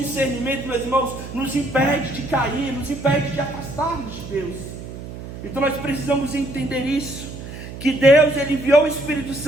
meus irmãos, nos impede de cair, nos impede de afastarmos de Deus. Então nós precisamos entender isso, que Deus, Ele enviou o Espírito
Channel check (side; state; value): right; noise; hum, 11 dB below the sound